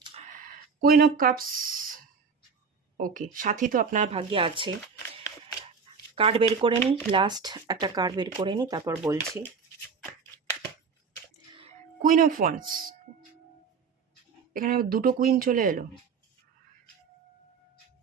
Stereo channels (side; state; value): left; quieter; 5.6 dB